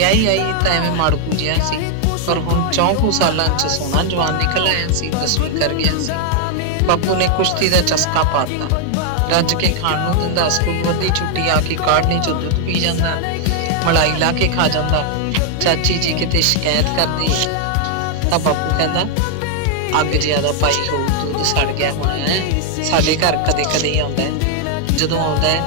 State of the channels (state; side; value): different; both; correlation 0.00